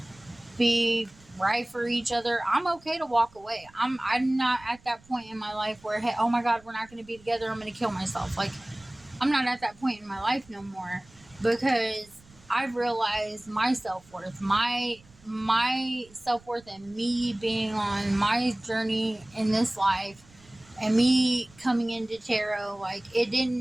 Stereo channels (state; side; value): noise; right; rumble, 27 dB below the sound